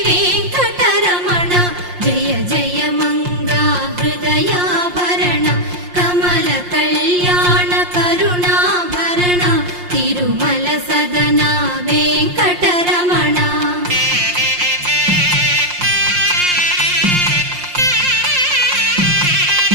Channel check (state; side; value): late; left; 5.6 ms